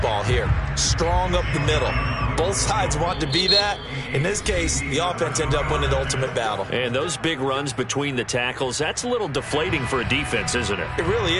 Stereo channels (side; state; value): both; identical; correlation 1.00